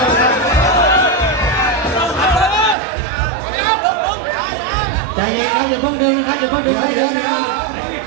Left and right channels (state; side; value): drops out; left; at 2.8 s